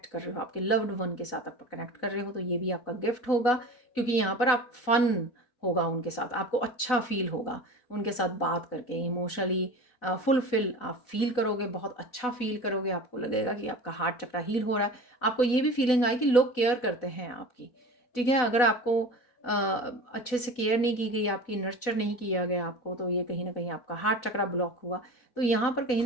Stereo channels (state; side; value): late; right; 4.0 ms